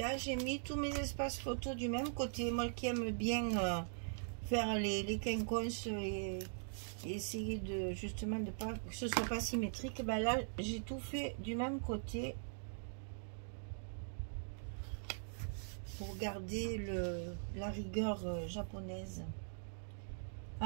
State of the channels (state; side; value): silent; left; digital silence